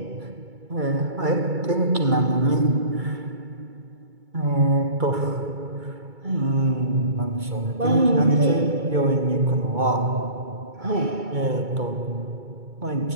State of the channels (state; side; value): late; left; 2.3 ms